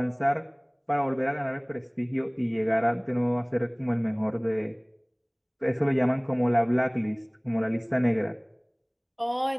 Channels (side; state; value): both; identical; correlation 1.00